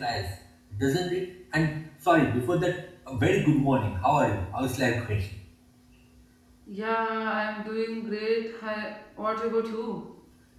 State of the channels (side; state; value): both; identical; correlation 1.00